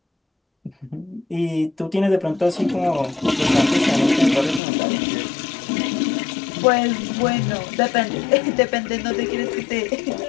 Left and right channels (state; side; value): drops out; right; at 4.6 s